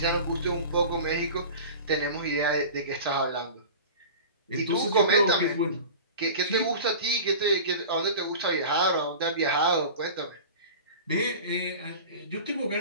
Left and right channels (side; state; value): both; inverted; correlation -0.36